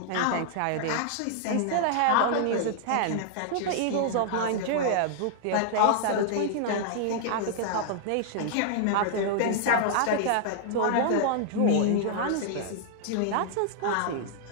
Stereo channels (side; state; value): both; different; correlation -0.01